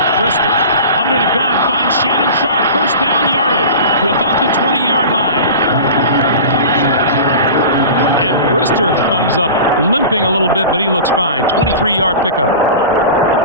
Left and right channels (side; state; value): both; inverted; correlation -0.34